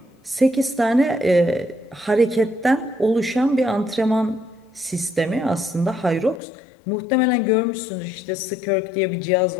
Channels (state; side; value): drops out; right; at 6.4 s